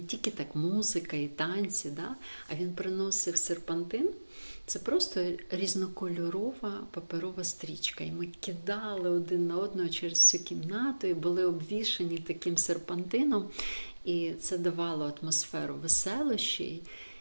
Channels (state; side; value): inverted; both; correlation -1.00